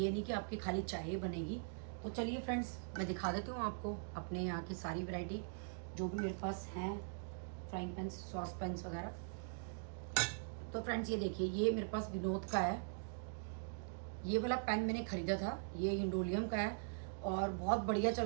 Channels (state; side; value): silent; left; digital silence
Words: नहीं कि आपकी खाली चाय ही बनेगी। तो चलिए फ्रेंड्स, मैं दिखा देती हूँ आपको अपने यहाँ की सारी वैरायटी जो भी मेरे पास हैं, फ्राइंग पैन, सॉस पैंस वगैरह। तो फ्रेंड्स ये देखिए, ये मेरे पास विनोद का है। ये वाला पैन मैंने ख़रीदा था, ये इंडोलियम का है और बहुत बढ़िया